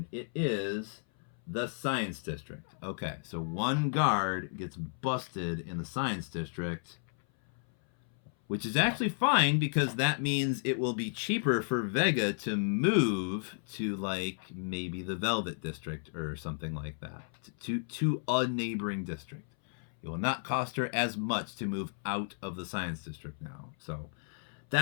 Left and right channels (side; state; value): right; silent; 56 dB below the other